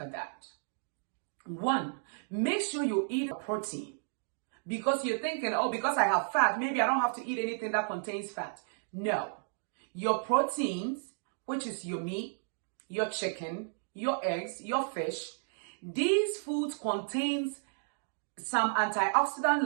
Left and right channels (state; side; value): silent; left; digital silence